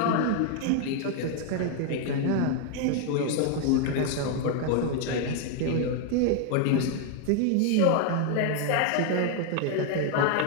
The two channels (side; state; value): both; different; correlation 0.01